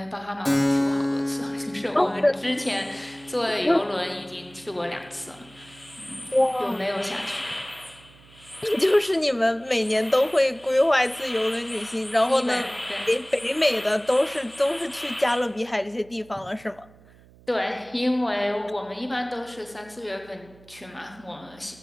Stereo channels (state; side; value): noise; right; hum, 25 dB below the sound